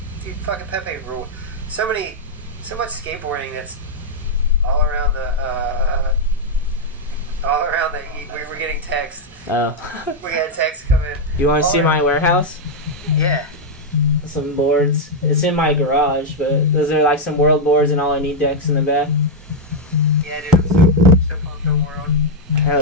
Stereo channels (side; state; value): both; normal; correlation -0.01